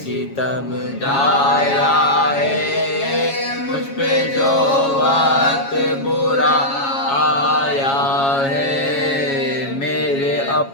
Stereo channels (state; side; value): late; right; 7.3 ms